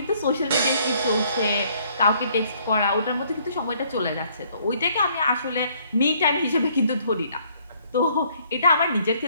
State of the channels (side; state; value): both; inverted; correlation -0.63